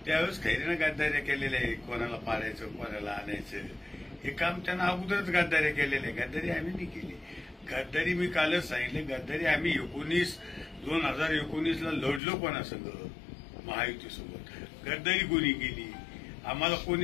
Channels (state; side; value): drops out; right; at 12.2 s